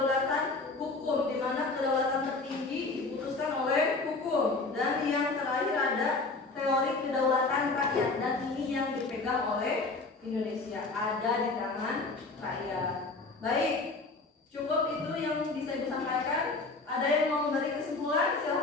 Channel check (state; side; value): quieter; right; 3.6 dB